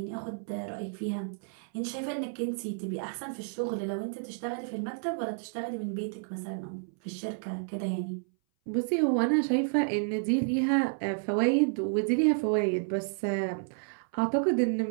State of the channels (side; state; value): left; silent; 57 dB below the other